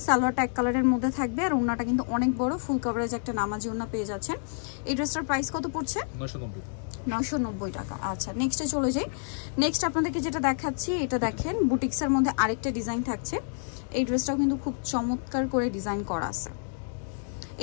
সালোয়ারটা এক কালারের মধ্যে থাকবে, আর ওড়নাটা কিন্তু অনেক বড়, ফুল কভারেজ একটা নামাজি ওড়না পেয়ে যাচ্ছেন। এই ড্রেসটার প্রাইস কত পড়ছে? 990 টাকা। আচ্ছা, নেক্সটে চলে যাই। নেক্সট আপনাদেরকে যেটা দেখাচ্ছি, এটা দেখেন বুটিক্সের মধ্যে আরেকটা ডিজাইন থাকছে। এই ড্রেসটাও কিন্তু খুব চমৎকার করে ডিজাইন করা আছে।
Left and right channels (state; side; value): silent; right; digital silence